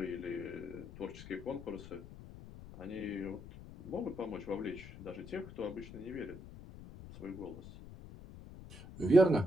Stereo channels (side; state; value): left; noise; rumble, 14 dB below the sound